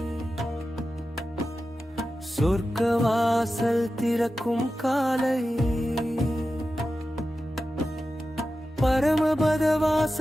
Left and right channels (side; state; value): both; normal; correlation 0.92